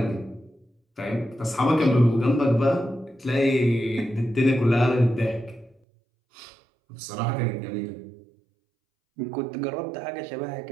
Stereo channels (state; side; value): drops out; left; at 5.8 s